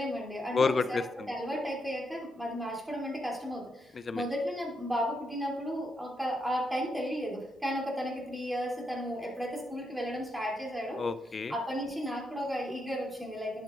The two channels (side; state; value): both; normal; correlation 0.81